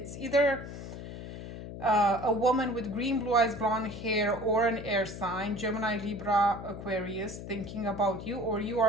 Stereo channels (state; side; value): noise; left; hum, 10 dB below the sound